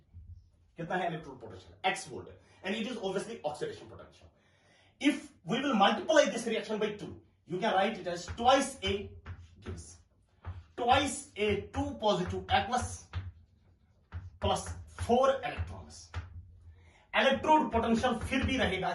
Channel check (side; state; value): both; identical; correlation 1.00